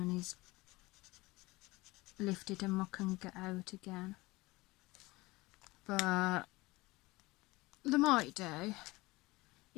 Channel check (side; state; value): right; quieter; 21.4 dB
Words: is lifted and I can get out again. But they might do.